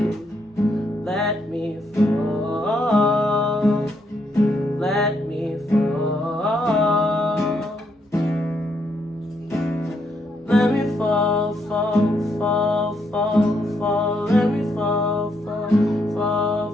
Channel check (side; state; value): both; normal; correlation 0.75